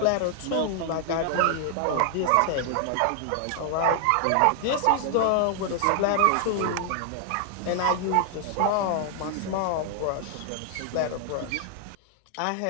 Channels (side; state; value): both; different; correlation 0.00